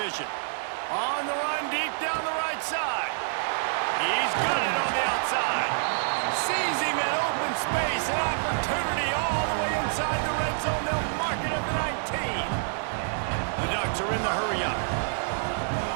On the run, deep down the right side. He's got it on the outside. Sees him in open space, an opportunity all the way inside the red zone. They'll mark it at the 19. The Ducks are in the hurry-up.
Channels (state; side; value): silent; left; digital silence